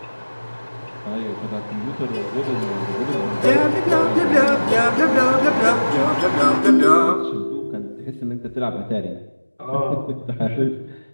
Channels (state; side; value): inverted; both; correlation -1.00